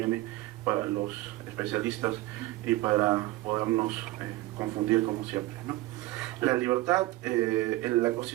para los especialistas y para podernos confundir, como siempre, ¿no? La libertad, en la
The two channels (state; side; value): quieter; left; 18.1 dB